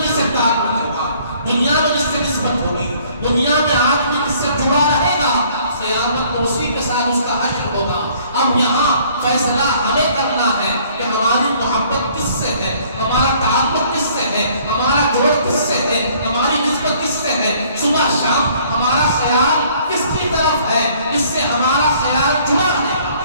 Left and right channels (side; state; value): both; inverted; correlation -0.59